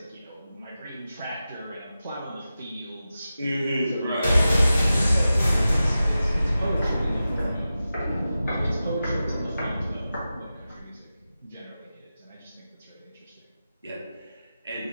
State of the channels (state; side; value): inverted; both; correlation -0.93